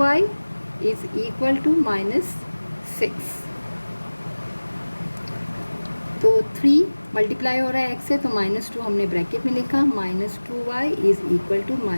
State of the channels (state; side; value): inverted; both; correlation -1.00